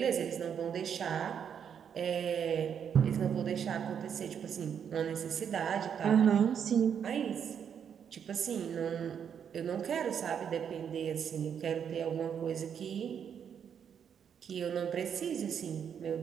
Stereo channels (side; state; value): left; quieter; 7.9 dB